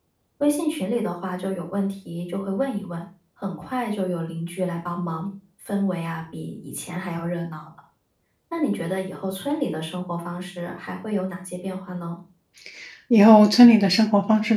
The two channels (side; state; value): both; identical; correlation 1.00